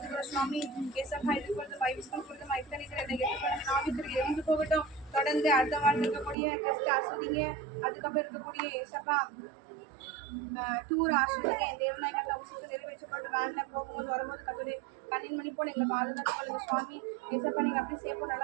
சுவாமி. இயேசப்பா இது பொழுது பைபிள் ஸ்கூல் பொழுது நாவித்திற்கு இருந்து போகட்டும். தொடர்ந்து அடுத்த வாரம் இருக்கக்கூடிய டெஸ்ட் ஆசிரியங்க, அதுக்கப்புறம் இருக்கக்கூடிய இயேசப்பா டூர் ஆசிரியங்க. என் தேவநாயக அவசியத்தை நிறைவேற்றப்பட்டு வேன்ல போகும்போது வரும்போது கட்டுரை கண்ணின் மணி போல எங்களை பாதுகாத்து கொள்ளுங்க சுவாமி. ஏசப்பா நீங்க அப்படி சேஃபா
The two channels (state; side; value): drops out; left; at 6.4 s